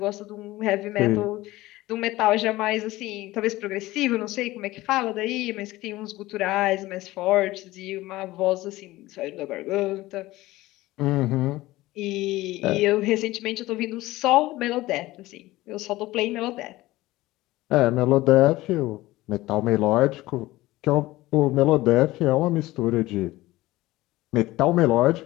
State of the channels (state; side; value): quieter; right; 18.0 dB